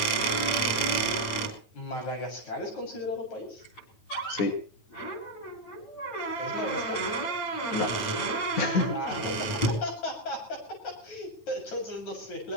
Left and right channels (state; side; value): late; right; 9.2 ms